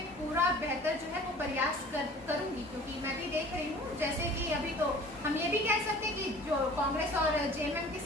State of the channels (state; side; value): normal; both; correlation 0.46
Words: पूरा बेहतर जो है वो प्रयास करूंगी, क्योंकि मैं भी देख रही हूँ जैसे कि अभी तो हम ये भी कह सकते हैं कि जो कांग्रेस और जेएमएम की